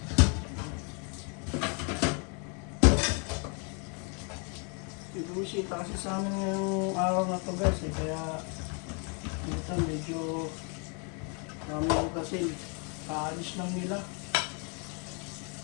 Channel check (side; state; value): right; quieter; 36.3 dB